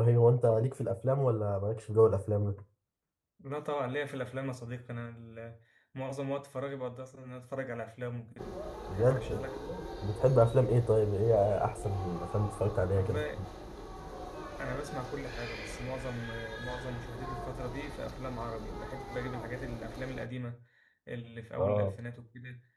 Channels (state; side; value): identical; both; correlation 1.00